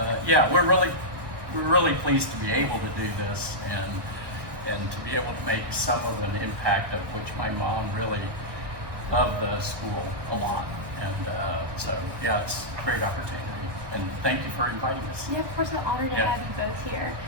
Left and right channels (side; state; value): left; late; 1.1 ms